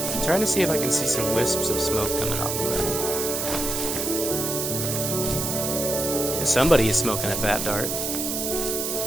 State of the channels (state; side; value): noise; right; hiss, 2 dB below the sound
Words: I'm trying to see if I can see some wisps of smoke coming off of it. Yeah, somebody is smoking a fat dart.